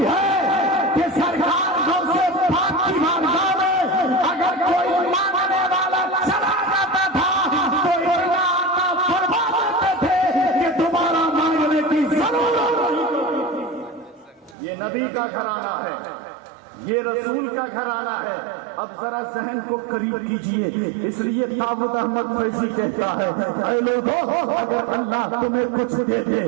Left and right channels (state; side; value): drops out; left; at 14.6 s